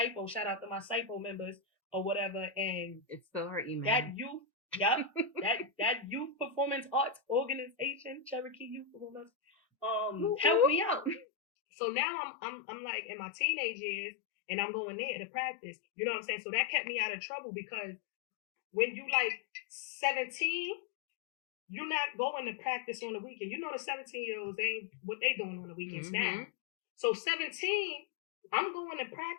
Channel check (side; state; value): right; drops out; at 11.2 s